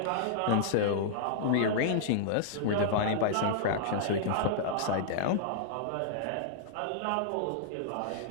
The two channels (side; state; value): both; different; correlation -0.02